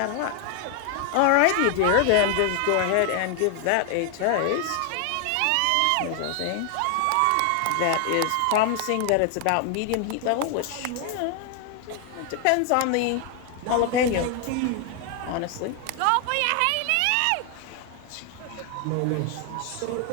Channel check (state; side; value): different; both; correlation 0.00